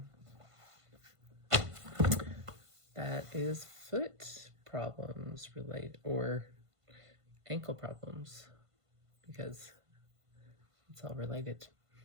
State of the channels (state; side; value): late; left; 1.5 ms